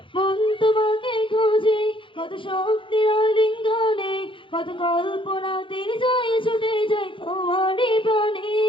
মন তোমাকে খোঁজে কত শক্তির আলিঙ্গনে কত কল্পনা তিনি যায় ছুটে যায় তোমারই প্রাণে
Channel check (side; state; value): right; late; 0.25 ms